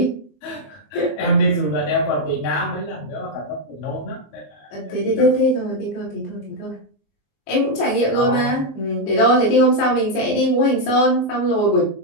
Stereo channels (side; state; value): right; late; 19 ms